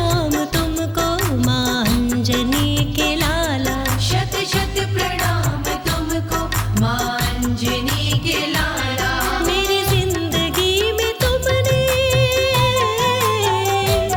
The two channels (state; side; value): identical; both; correlation 1.00